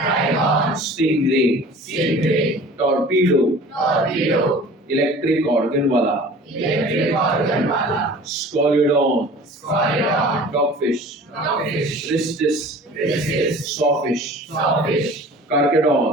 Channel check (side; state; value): both; normal; correlation 0.44